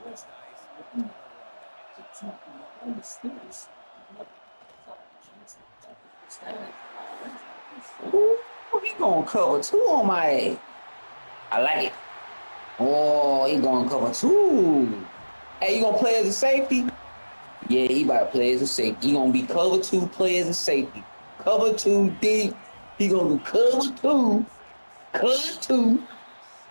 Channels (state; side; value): inverted; both; correlation -1.00